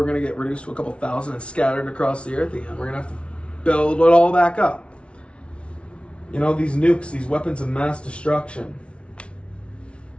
going to get reduced to a couple thousand and scattered across the earth again. We're going to have to build it all back up. These nukes, these weapons of mass destruction,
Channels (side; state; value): right; late; 0.060 ms